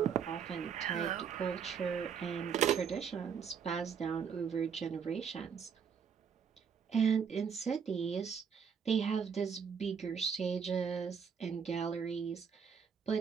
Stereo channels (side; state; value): left; quieter; 6.9 dB